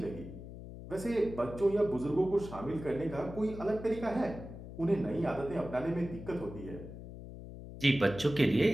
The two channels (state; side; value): noise; left; hum, 12 dB below the sound